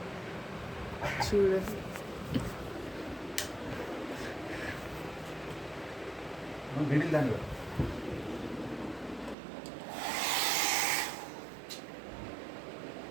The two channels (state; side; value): drops out; left; at 9.3 s